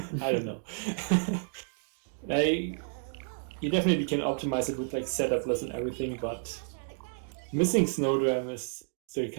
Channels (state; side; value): silent; left; digital silence